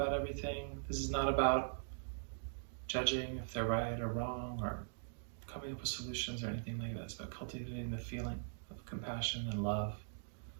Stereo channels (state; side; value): silent; left; digital silence